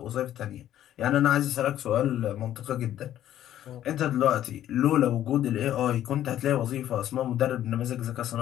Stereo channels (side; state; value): right; quieter; 12.0 dB